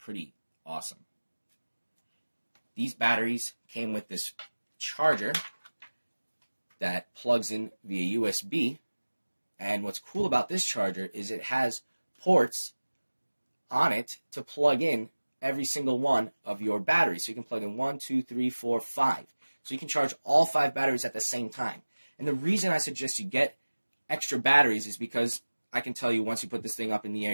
awesome. These batteries came with this charger that plugs in via USB. And what's cool about this charger is it has ports on it to plug in every single one of your batteries. So you can plug in 1, 2, 3, 4, 5. So you can charge all 5 batteries at the same time. And the reason I suggest you get extra batteries is because I can tell you once you put this thing up in the air,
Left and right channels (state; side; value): inverted; both; correlation -1.00